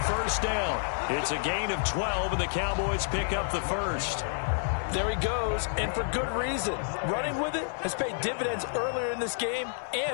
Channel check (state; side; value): silent; right; 58 dB below the other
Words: first down. It's a gain of 12, and the Cowboys pick up the first. There he goes, and for good reason. Running with it has paid dividends earlier in this game